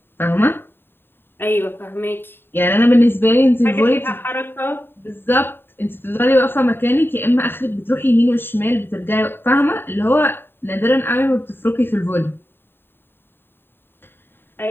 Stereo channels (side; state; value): right; late; 0.10 ms